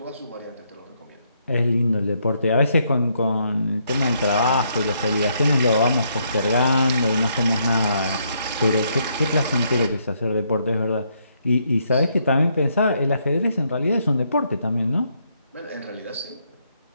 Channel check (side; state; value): both; inverted; correlation -0.74